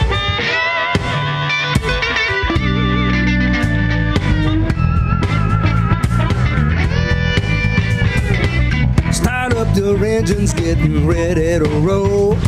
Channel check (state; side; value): identical; both; correlation 1.00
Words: up the engines, getting ready to roll.